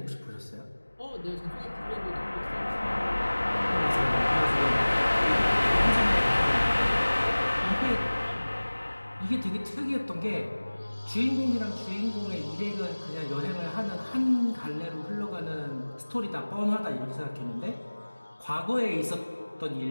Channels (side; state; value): both; inverted; correlation -1.00